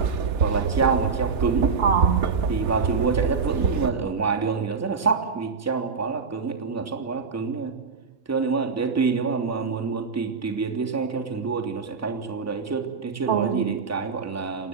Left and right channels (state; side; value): quieter; left; 5.2 dB